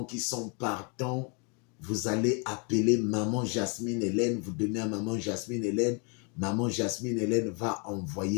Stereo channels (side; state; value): right; quieter; 35.6 dB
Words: qui sont partants, vous allez appeler Maman Jasmine Hélène, vous donnez à Maman Jasmine Hélène. Maman Jasmine Hélène va